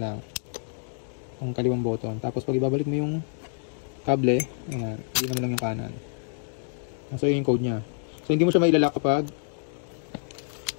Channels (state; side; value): silent; right; digital silence